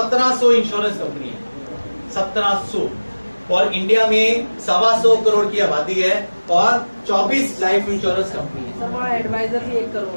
इंश्योरेंस कंपनी है, 1700, और इंडिया में 125 करोड़ की आबादी है और 24 लाइफ इंश्योरेंस कंपनी है। सर वहाँ एडवाइजर भी 1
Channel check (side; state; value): both; inverted; correlation -1.00